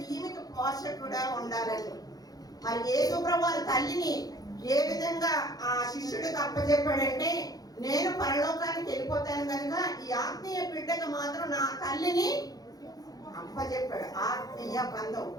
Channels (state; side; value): late; right; 0.18 ms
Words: ఈమెకి పోషకుడా ఉండాలని మరి యేసు ప్రభువు వారి తల్లిని ఏ విధంగా ఆ శిష్యుడికి అప్పచెప్పాడంటే, నేను పరలోకానికి వెళ్ళిపోతాను కనుక ఈ ఆత్మీయ బిడ్డకు మాత్రం నా తల్లిని అప్పచెప్పాడు. ఆత్మీయ బంధం,